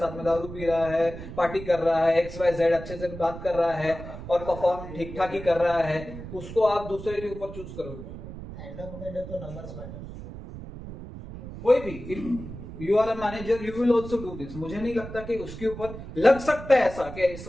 में दारू पी रहा है, पार्टी कर रहा है, XYZ अच्छे से बात कर रहा है और परफॉर्म ठीक ठाक ही कर रहा है, उसको आप दूसरे के ऊपर चूज करोगे? एंड ऑफ द डे तो नंबर्स मैटर। कोई भी, if you are a manager you will also do this. मुझे नहीं लगता कि उसके ऊपर लग सकता है ऐसा कि इस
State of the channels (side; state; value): right; noise; rumble, 11 dB below the sound